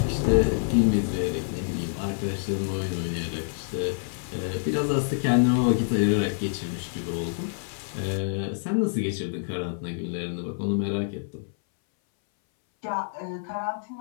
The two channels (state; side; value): silent; right; 60 dB below the other